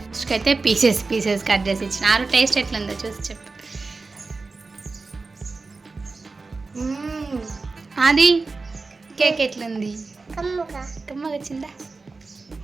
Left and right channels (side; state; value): left; quieter; 3.9 dB